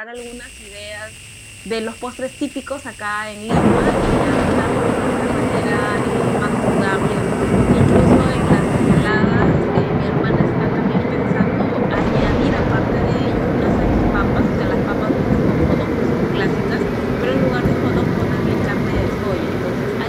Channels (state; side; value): identical; both; correlation 1.00